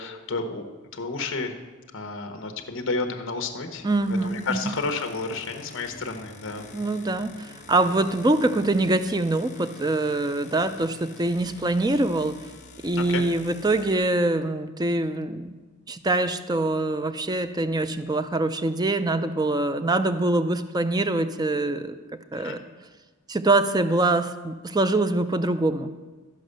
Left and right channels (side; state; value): both; normal; correlation 0.52